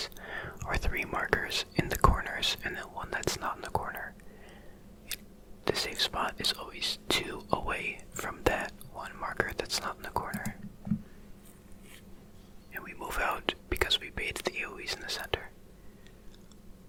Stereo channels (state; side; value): identical; both; correlation 1.00